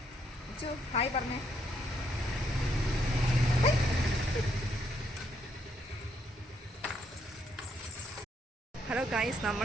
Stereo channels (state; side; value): normal; both; correlation 0.74